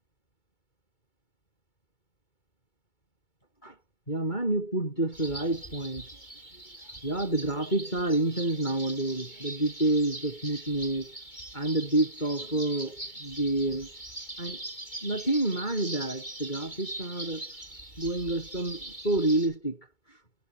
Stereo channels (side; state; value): right; late; 2.2 ms